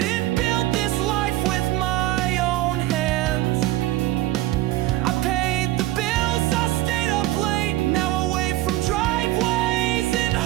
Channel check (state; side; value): quieter; left; 16.4 dB